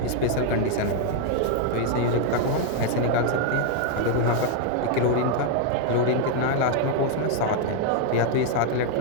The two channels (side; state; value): both; different; correlation 0.00